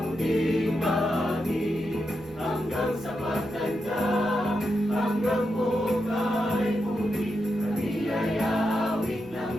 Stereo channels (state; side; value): noise; right; rumble, 23 dB below the sound